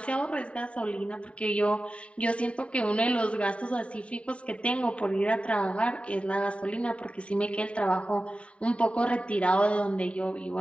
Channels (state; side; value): late; right; 0.062 ms